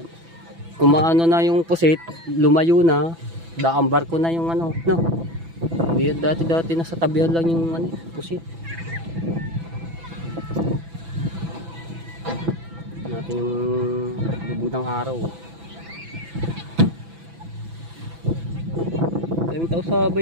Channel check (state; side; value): late; left; 6.0 ms